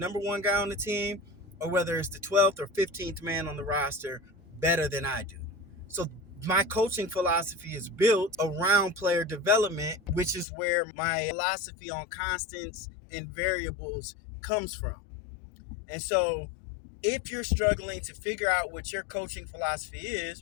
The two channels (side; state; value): right; drops out; at 10.5 s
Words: one guy on the team, or whether it's the 12th or 15th man on the roster, better than I do. So my coaching philosophy is built around player development, which is where my philosophy on constants and variables comes from. And so if you're struggling to figure out what your coaching philosophy